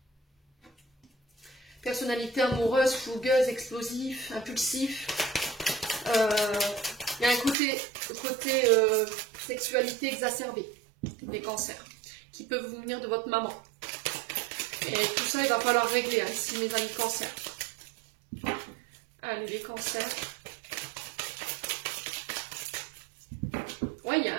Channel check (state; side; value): drops out; left; at 7.6 s